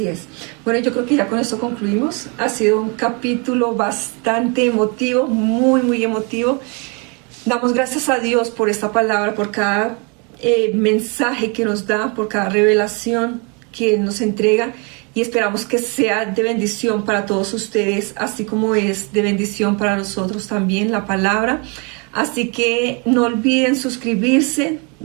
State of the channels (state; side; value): quieter; left; 32.8 dB